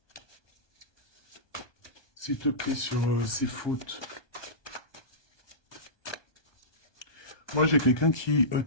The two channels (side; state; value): right; late; 1.2 ms